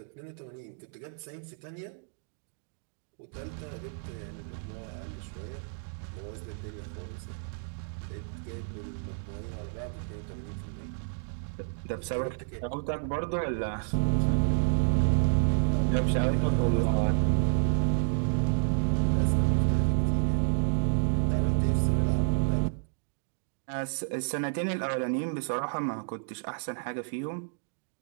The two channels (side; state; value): left; silent; digital silence